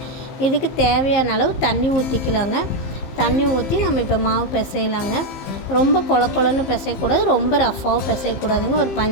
இதுக்கு தேவையான அளவு தண்ணி ஊற்றிக்கலாங்க. தண்ணி ஊற்றி நம்ம இப்போ மாவு பிசையலாங்க. ரொம்ப கொலன்னு பிசையக்கூடாது, ரொம்ப ரஃப்பாகவும் பிசையக்கூடாதுங்க. ஒரு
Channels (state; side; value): late; right; 15 ms